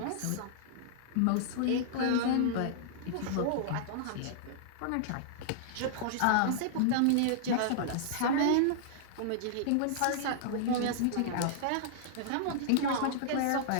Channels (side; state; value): both; different; correlation -0.01